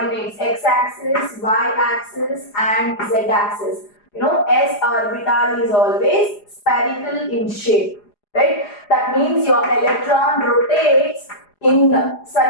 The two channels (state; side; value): late; right; 4.9 ms